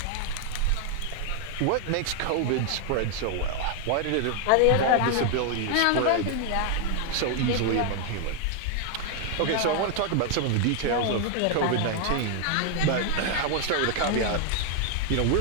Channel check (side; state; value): both; different; correlation 0.00